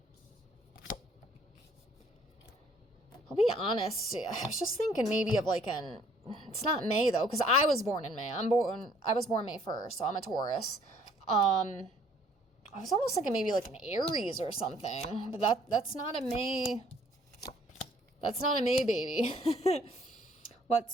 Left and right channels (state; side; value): normal; both; correlation 0.61